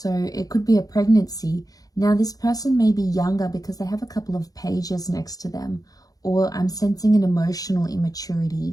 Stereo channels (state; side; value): late; right; 0.18 ms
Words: it could be a pregnancy. Now this person may be younger because they have a couple of pages next to them, or I'm sensing an emotional